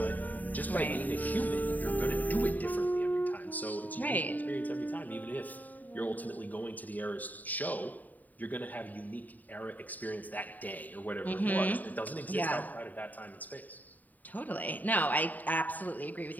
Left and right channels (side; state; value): right; late; 0.082 ms